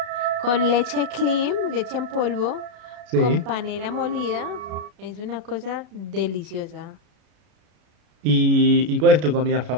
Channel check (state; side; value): late; left; 33 ms